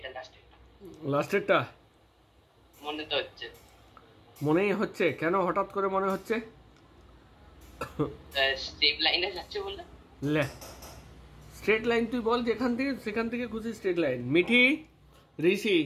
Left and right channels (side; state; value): both; identical; correlation 1.00